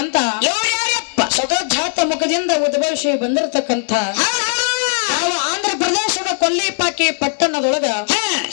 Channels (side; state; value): right; silent; 67 dB below the other